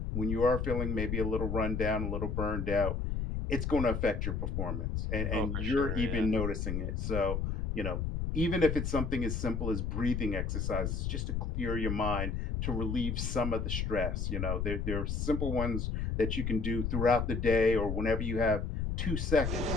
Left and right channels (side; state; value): left; noise; rumble, 1 dB below the sound